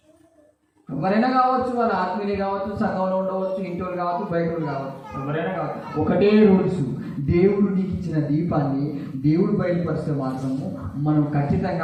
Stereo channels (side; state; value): both; identical; correlation 1.00